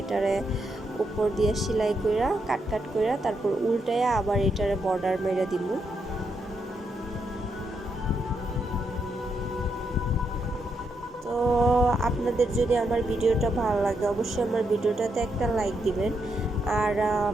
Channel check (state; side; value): normal; both; correlation 0.80